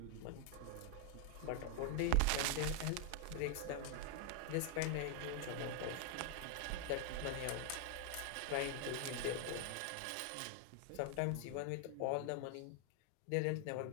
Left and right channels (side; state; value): both; different; correlation 0.00